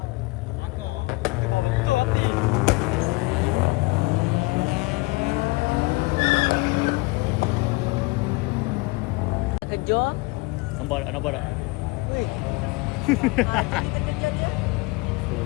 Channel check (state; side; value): quieter; right; 24.5 dB